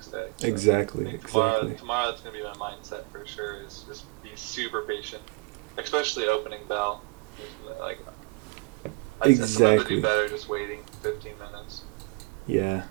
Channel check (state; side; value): quieter; left; 29.5 dB